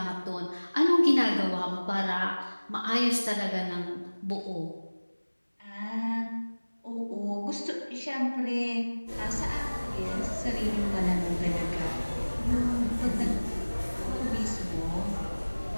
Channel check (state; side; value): inverted; both; correlation -1.00